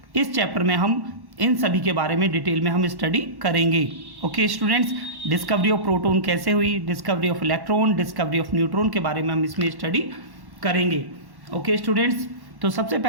इस चैप्टर में हम इन सभी के बारे में डिटेल में हम स्टडी करेंगे. Okay students, discovery of proton कैसे हुई, discovery of electron, discovery of neutron के बारे में हम इसमें स्टडी करेंगे. ओके स्टूडेंट्स, तो सबसे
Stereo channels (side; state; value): left; late; 1.1 ms